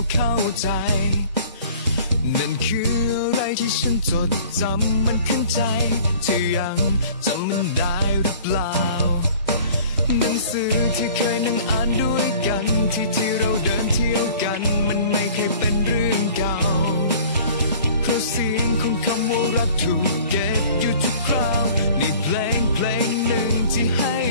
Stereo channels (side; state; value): both; inverted; correlation -0.48